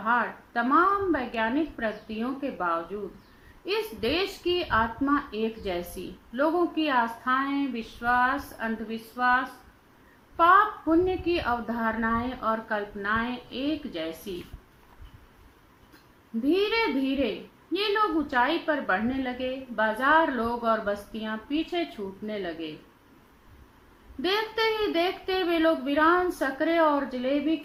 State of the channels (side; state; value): both; identical; correlation 1.00